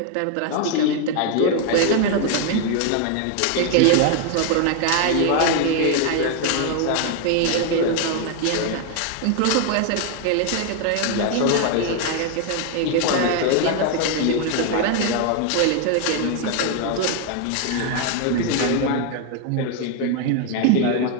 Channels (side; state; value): both; different; correlation 0.00